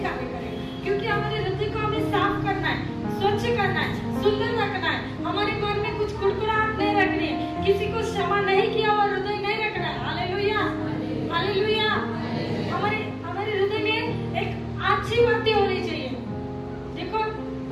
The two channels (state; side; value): identical; both; correlation 1.00